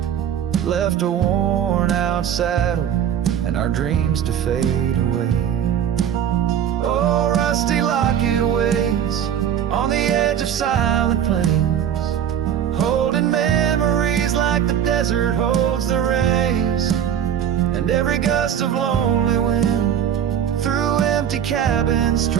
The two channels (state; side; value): quieter; left; 9.3 dB